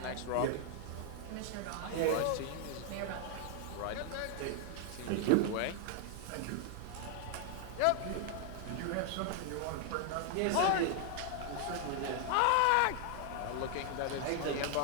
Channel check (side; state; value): both; different; correlation 0.00